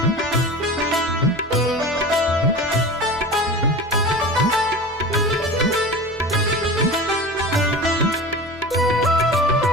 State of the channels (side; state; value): both; normal; correlation 0.33